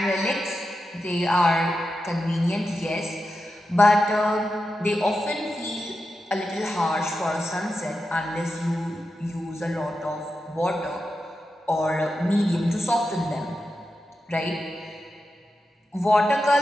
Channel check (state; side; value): normal; both; correlation 0.89